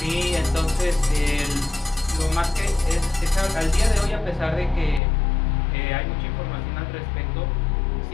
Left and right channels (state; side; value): drops out; right; at 5.0 s